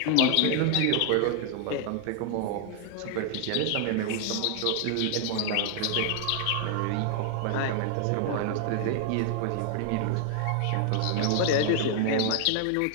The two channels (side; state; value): both; different; correlation 0.00